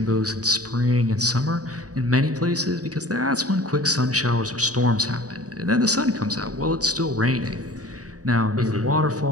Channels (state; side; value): late; left; 0.67 ms